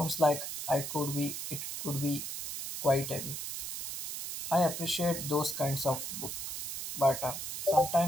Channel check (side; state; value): right; noise; hiss, 5 dB below the sound